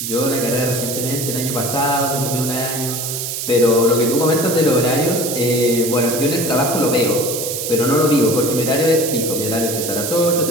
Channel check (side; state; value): right; noise; hiss, 4 dB below the sound